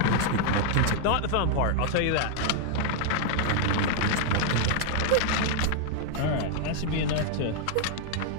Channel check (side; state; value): both; different; correlation 0.00